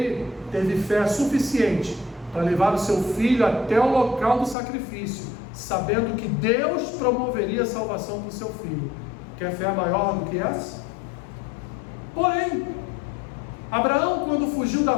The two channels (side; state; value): right; drops out; at 4.5 s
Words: teve fé suficiente para levar o seu filho até o local do sacrifício, sabendo que Deus promoveria a salvação para o seu filho. Quer fé maior do que essa? Porém, Abraão, quando fugiu da